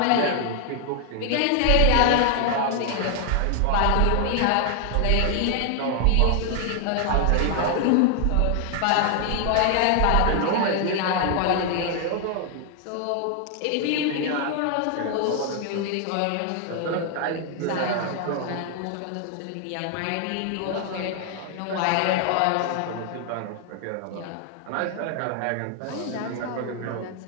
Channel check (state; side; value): different; both; correlation 0.00